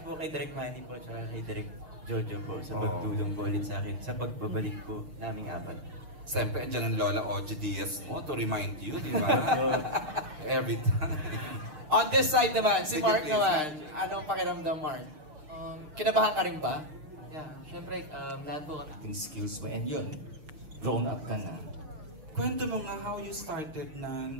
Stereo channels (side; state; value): left; late; 6.5 ms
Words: po kay Direk Manny po, tsaka kay Direk Jojo po sa pagtulong po ulit sa akin sa pagbabalik po naming apat. Siyempre, andyan ang Lola Oji Diaz mo to remind you, di ba? Every time. On this side naman, si Mark naman. Anong pakiramdam, Mark? Kinabahan ka rin ba? Yeah, syempre, lahat po acting skills mo, and yun, grown up ka na. Kwento mo nga how you started na